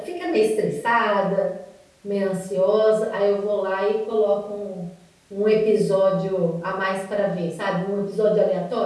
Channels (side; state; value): both; identical; correlation 1.00